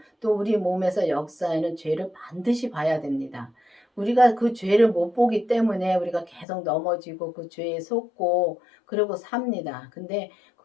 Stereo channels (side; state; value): right; drops out; at 6.5 s